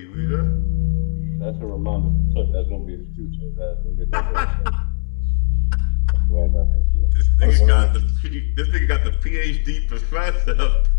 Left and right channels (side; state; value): right; silent; digital silence